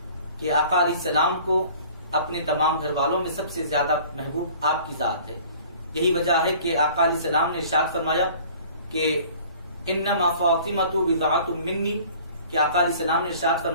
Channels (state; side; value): inverted; both; correlation -0.49